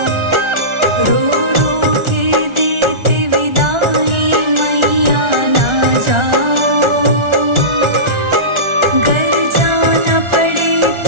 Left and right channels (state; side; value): late; left; 1.4 ms